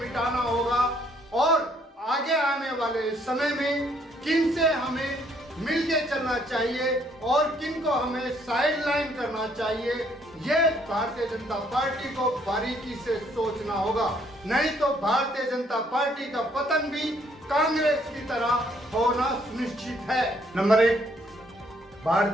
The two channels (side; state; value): both; normal; correlation 0.67